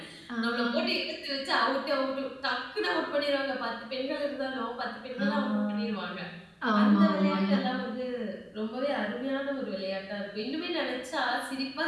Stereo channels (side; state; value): both; identical; correlation 1.00